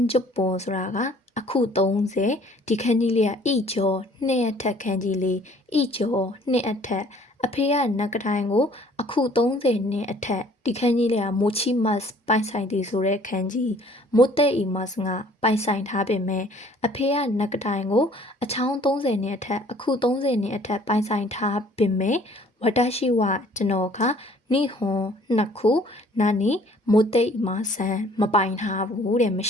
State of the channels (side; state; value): both; normal; correlation 0.55